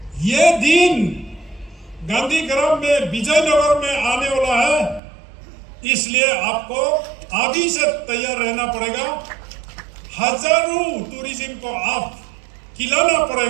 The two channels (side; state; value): left; drops out; at 5.0 s